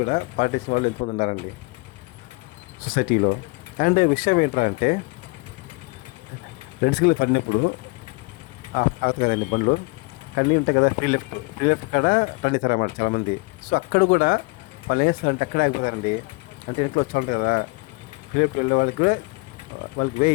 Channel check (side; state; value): right; quieter; 27.7 dB